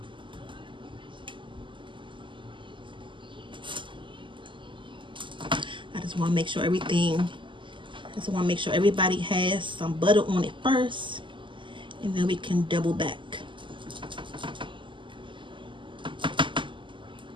I just want to make sure everybody has some butter on it first, and then we can double back.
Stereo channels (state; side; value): late; left; 0.24 ms